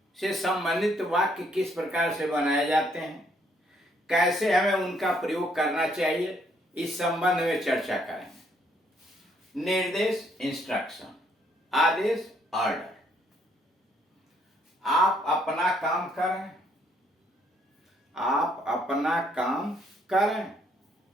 से संबंधित वाक्य किस प्रकार से बनाए जाते हैं, कैसे हमें उनका प्रयोग करना चाहिए, इस संबंध में चर्चा करेंगे। निर्देश इंस्ट्रक्शन, आदेश ऑर्डर। आप अपना काम करें, आप अपना काम करें।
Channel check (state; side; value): normal; both; correlation 0.69